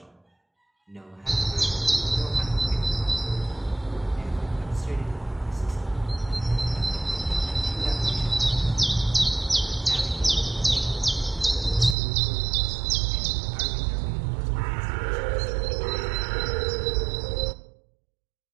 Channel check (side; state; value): left; drops out; at 12.0 s